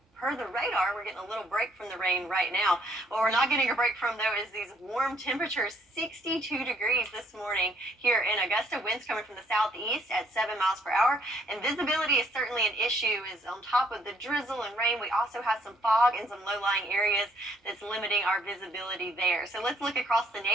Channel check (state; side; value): normal; both; correlation 0.67